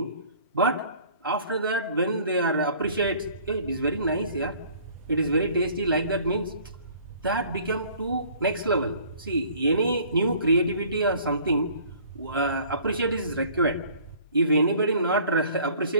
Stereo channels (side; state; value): both; inverted; correlation -0.53